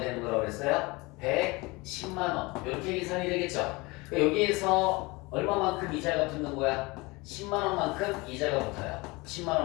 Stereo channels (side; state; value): right; quieter; 24.3 dB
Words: 거라고 그랬어요? 110만 원. 이렇게 계산이 되겠죠. 여기에서 얼마만큼 이자가 붙는 거야? 10만 원만큼 이자가 붙어요. 10만